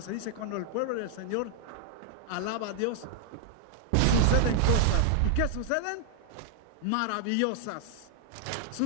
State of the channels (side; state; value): both; different; correlation -0.01